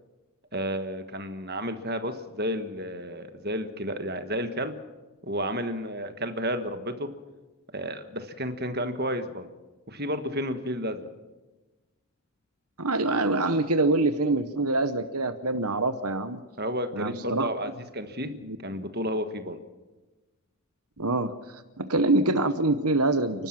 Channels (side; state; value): both; normal; correlation -0.04